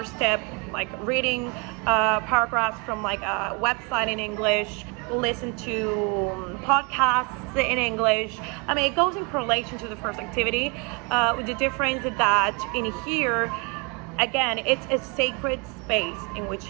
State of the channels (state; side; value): quieter; left; 30.1 dB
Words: step, like reading paragraphs from like a website in English, listen to podcasts in English. I mean, it goes in correlation to the first activity, with the difference that in here, again, it's a sacred space in which